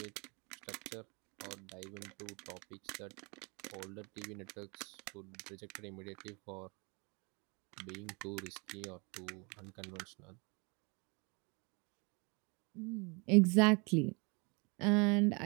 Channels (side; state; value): left; quieter; 30.9 dB